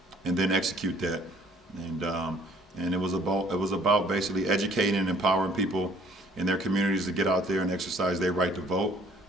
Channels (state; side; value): normal; both; correlation 0.58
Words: and then execute that, and it was about basically educating and empowering people in their communities to get out there and exercise their right to vote.